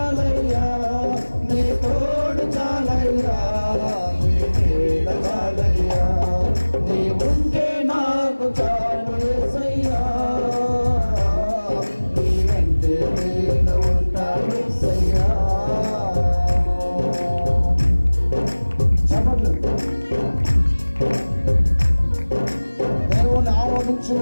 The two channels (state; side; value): inverted; both; correlation -1.00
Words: నీ తోడు చాలయ్యా నీ నీడ చాలయ్యా నీ ఉంటే నాకు చాలు యేసయ్యా నీ వెంటే నేను ఉంటాను యేసయ్యా దేవుని